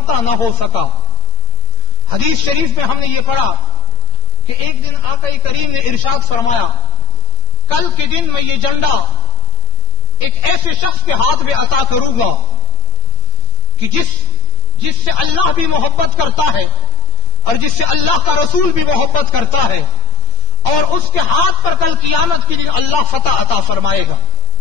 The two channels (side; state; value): right; late; 8.8 ms